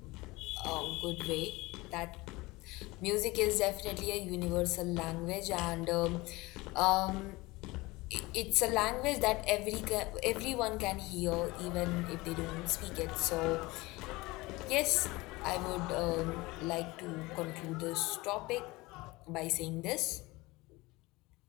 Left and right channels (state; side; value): quieter; right; 21.8 dB